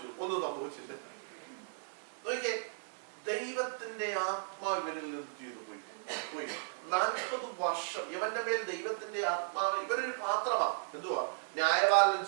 ഒന്നും സംഭവിച്ചില്ല. നോക്കിയേ, ദൈവത്തിന്റെ ആത്മാവ് ഇവരിൽ നിന്ന് ചെയ്തു പോയി. 40 വർഷം ഇവന്റെ മേൽ ദൈവത്തിന്റെ ആത്മാവ്. ഇവരൊരു പാത്രമാണ്. എന്തുവാ? ന്യായപാലനം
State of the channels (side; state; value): left; silent; 54 dB below the other